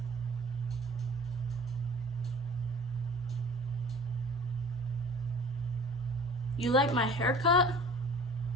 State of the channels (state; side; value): normal; both; correlation 0.45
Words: You like my haircut?